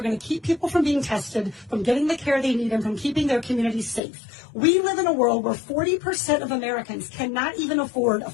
going to keep people from being tested, from getting the care they need, and from keeping their communities safe. We live in a world where 40% of Americans cannot even afford a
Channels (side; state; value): right; drops out; at 4.0 s